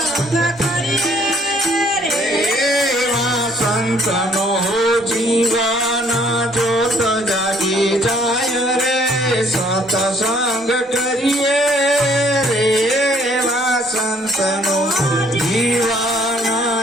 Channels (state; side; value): normal; both; correlation 0.62